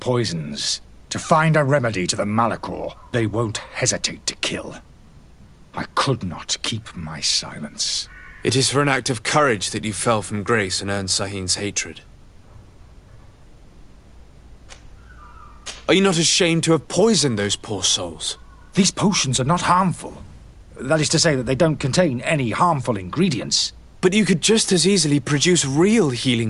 To find a remedy to the Malachor, they won't hesitate to kill. I could not keep my silence. It is for an act of courage that you fell from grace and earned Sahin's hatred. Are you not ashamed to have poisoned those poor souls? These potions are not harmful. That is to say that they don't contain any harmful ingredients. But you could just as easily produce real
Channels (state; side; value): identical; both; correlation 1.00